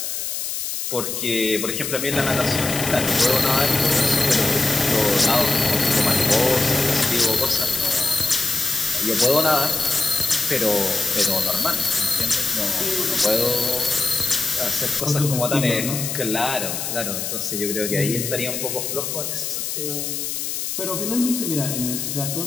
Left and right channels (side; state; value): left; noise; hiss, 3 dB below the sound